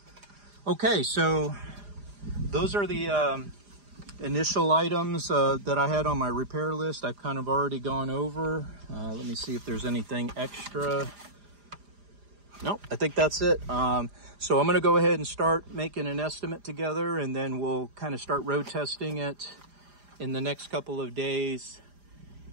Okay, so those are the initial items that I had on my repair list. I've kind of already gone over. Let me see if there's anything extra. Nope, I think that's it. So I'm going to go ahead and start making an estimate together, and then we'll kind of start road testing it in the next couple of days.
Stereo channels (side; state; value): left; late; 4.9 ms